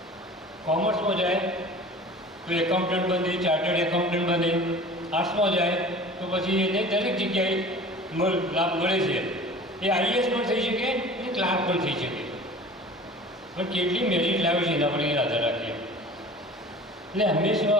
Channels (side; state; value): both; normal; correlation 0.41